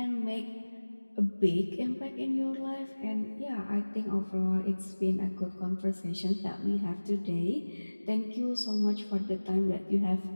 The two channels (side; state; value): both; inverted; correlation -1.00